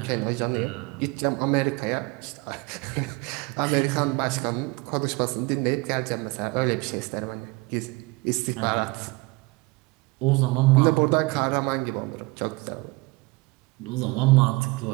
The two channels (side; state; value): left; quieter; 24.9 dB